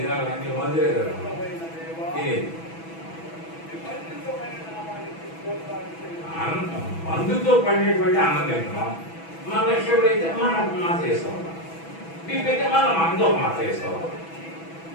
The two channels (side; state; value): right; late; 6.1 ms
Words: అన్ని మందులే కదా తినేది. మందుతో పండేటువంటి అన్నం తింటున్నాం. మన షుగర్ అయితే మనం మాత్ర వేసుకోవాలి, బీపీ అయితే మనం మందు ఒక మాత్ర వేసుకోవాలి.